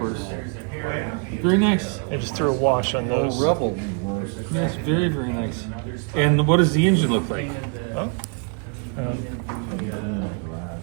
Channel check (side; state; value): left; quieter; 39.2 dB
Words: Very nice. I just threw a wash on those. Revell. Yes, very, very nice. And what does the engine look like?